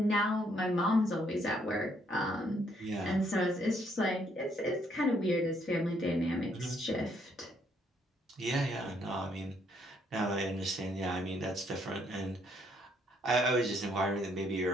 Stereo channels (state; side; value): normal; both; correlation 0.70